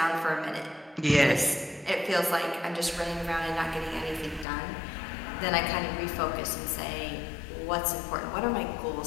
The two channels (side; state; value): right; drops out; at 4.5 s